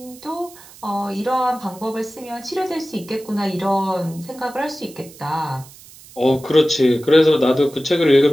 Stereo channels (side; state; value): right; noise; hiss, 21 dB below the sound